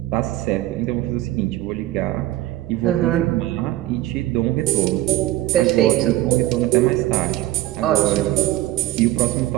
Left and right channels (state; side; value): quieter; left; 16.1 dB